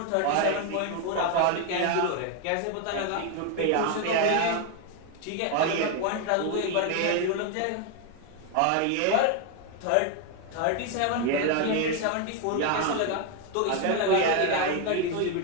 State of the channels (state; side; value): different; both; correlation 0.01